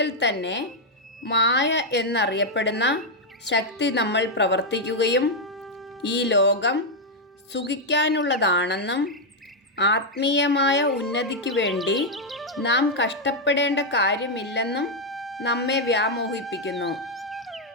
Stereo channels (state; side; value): normal; both; correlation 0.00